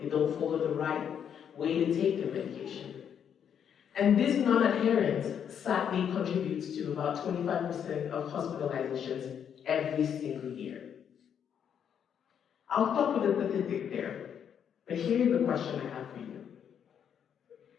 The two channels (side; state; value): right; quieter; 8.3 dB